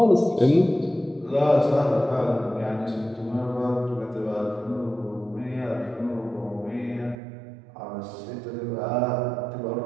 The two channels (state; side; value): drops out; left; at 7.2 s